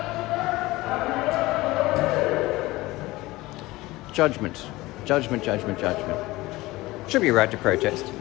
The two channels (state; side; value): quieter; right; 19.6 dB